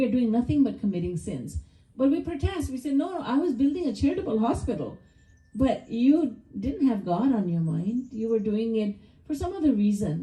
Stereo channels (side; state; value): both; identical; correlation 1.00